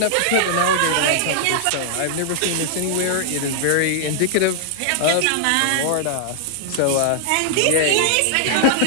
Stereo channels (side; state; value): both; different; correlation -0.01